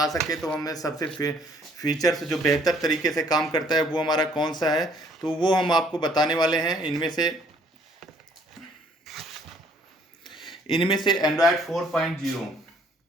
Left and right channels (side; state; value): both; normal; correlation 0.62